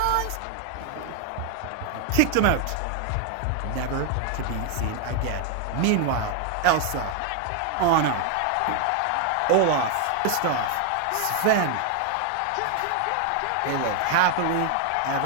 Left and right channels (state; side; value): different; both; correlation 0.01